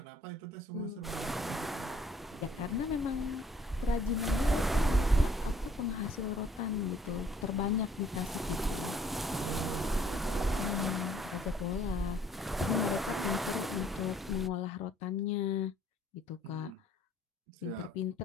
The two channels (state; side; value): normal; both; correlation 0.61